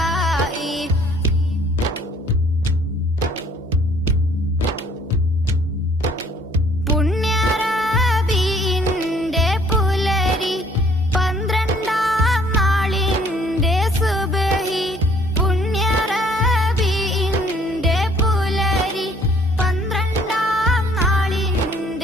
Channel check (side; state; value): both; normal; correlation 0.60